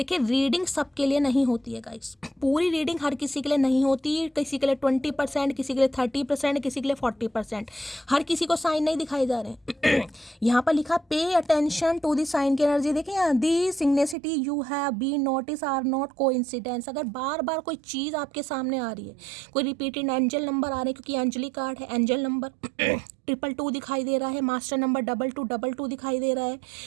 रीडिंग सबके लिए नहीं होती है गाइस, पूरी रीडिंग हर किसी के लिए नहीं होती। किसी के लिए 20%, किसी के लिए 30%, किसी के लिए 40%। हर किसी को साइन नहीं दिखाई जा रहे हैं। यहाँ पर लिखा pay attention to the sign की एनर्जी। देखिए यहाँ the synchronicity you have been notice are not coincidence. अगर बार बार कोई चीज़ आपके सामने आ रही है, कोई रिपीटेड एंजल नंबर आ रहे हैं, क्योंकि एंजली कार्ड है, एंजल नंबर 222 दिखाई दे रहा है, मास्टर नंबर 2222 दिखाई दे रहा है,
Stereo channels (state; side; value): drops out; left; at 14.2 s